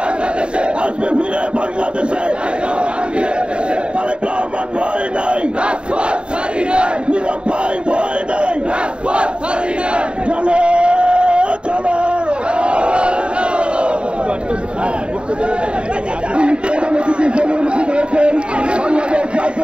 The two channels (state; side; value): late; left; 0.054 ms